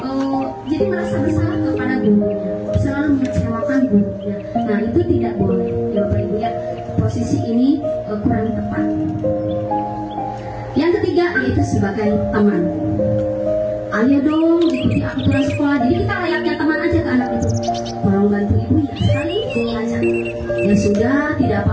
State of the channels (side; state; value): both; identical; correlation 1.00